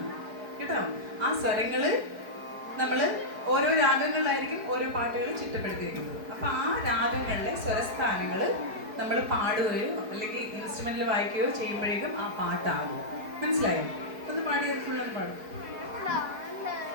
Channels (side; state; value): left; late; 4.7 ms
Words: കേട്ടോ. ആ സ്വരങ്ങള് നമ്മള് ഓരോ രാഗങ്ങളിലായിരിക്കും ഓരോ പാട്ടുകൾ ചിട്ടപ്പെടുത്തിയിരിക്കുന്നത്. അപ്പൊ ആ രാഗങ്ങളിലെ സ്വരസ്ഥാനങ്ങൾ നമ്മൾ പാടുകയോ അല്ലെങ്കിൽ ഇൻസ്ട്രുമെന്റിൽ വായിക്കുകയോ ചെയ്യുമ്പോഴേക്കും ആ പാട്ടാകും. മനസ്സിലായോ? ഒന്ന് പാടിയത് ഫുള്ളൊന്ന് പാടും.